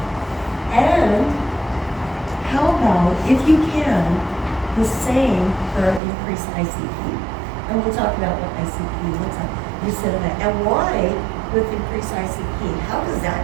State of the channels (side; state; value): left; drops out; at 6.0 s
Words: And how about, if you can, the same for increased ICP. And we'll talk about what ICP looks like. You sit them up. And why with increased ICP? How does that